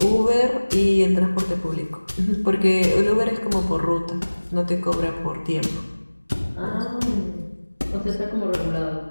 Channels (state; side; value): inverted; both; correlation -1.00